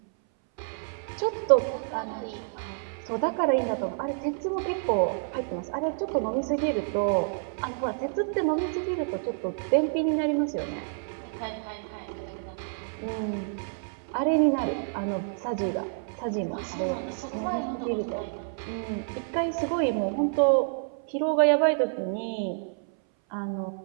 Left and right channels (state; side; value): silent; left; 59 dB below the other